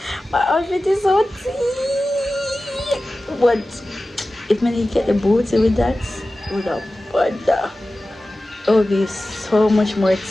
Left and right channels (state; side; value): normal; both; correlation 0.95